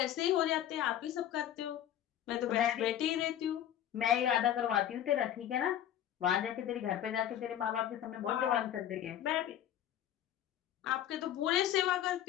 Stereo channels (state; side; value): quieter; right; 11.1 dB